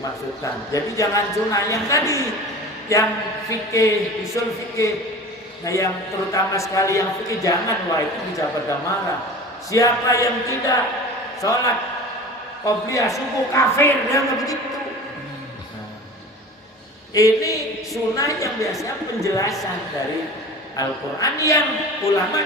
Jadi jangan sunnah yang tadi, yang fikih, usul fikih. Nah, yang terutama sekali yang fikih jangan, wah itu bisa pada marah. Siapa yang tidak sholat qobliyah subuh kafir, dia begitu. Nah, ini sunnah yang biasanya penjelasan dari Al-Quran yang ulama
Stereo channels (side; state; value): both; normal; correlation 0.37